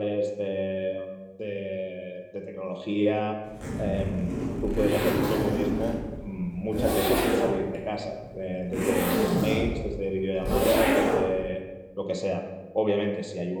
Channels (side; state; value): both; identical; correlation 1.00